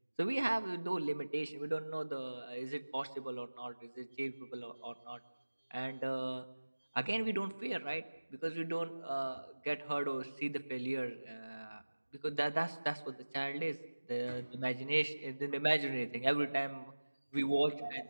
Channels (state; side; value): inverted; both; correlation -1.00